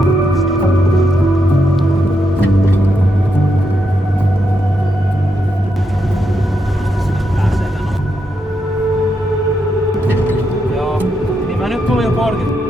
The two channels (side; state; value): both; normal; correlation 0.81